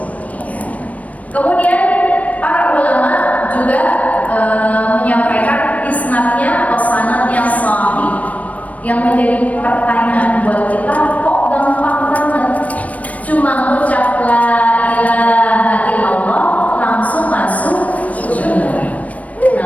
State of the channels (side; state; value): right; late; 0.069 ms